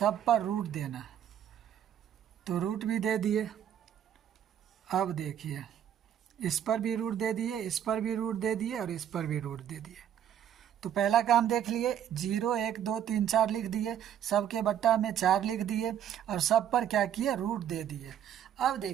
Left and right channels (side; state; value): left; quieter; 9.8 dB